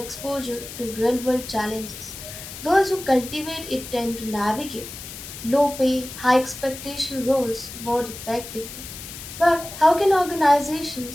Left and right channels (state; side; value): noise; left; hiss, 12 dB below the sound